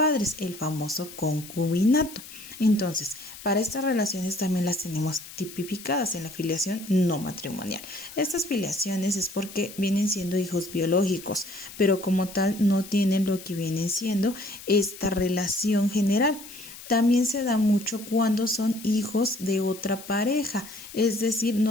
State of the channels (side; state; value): left; noise; hiss, 15 dB below the sound